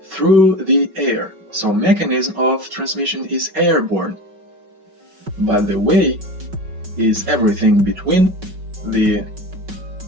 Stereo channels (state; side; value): late; left; 5.3 ms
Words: through the air. So mechanism of transmission is airborne, but the way is everything between the